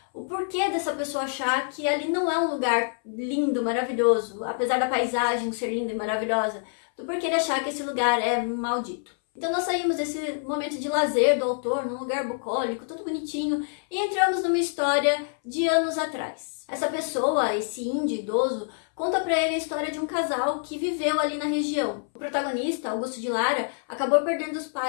O porquê dessa pessoa achar que ali não é um lugar lindo, maravilhoso, apesar da paisagem ser linda e maravilhosa, do porquê ele achar que esse lugar é maldito. Então nós saímos desse momento de lazer do autor, num lugar bucólico, todo bonitinho, e entramos numa história de anos atrás. Essa pessoa, esse índio idoso, conta pra ele a história de um casal que viveu ali na região. O protagonista, Augusto de Lara, acabou perdendo os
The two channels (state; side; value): silent; right; 61 dB below the other